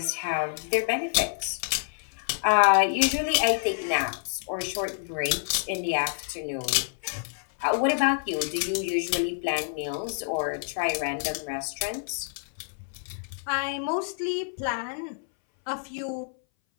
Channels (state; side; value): silent; right; 59 dB below the other